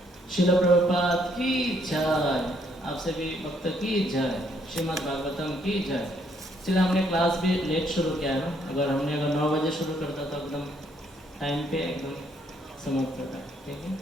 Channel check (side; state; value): both; normal; correlation 0.69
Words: श्रील प्रभुपाद की जय, आप सभी भक्त की जय, श्रीमद् भागवतम की जय। चलिए, हमने क्लास भी लेट शुरू किया है ना, अगर 9 बजे शुरू करता तो एकदम टाइम पे एकदम समाप्त करता है। ठीक है,